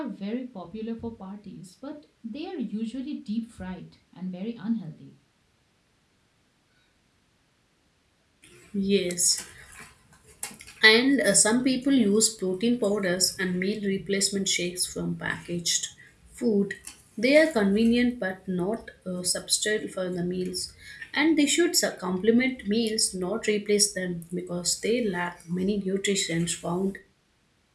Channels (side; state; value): both; identical; correlation 1.00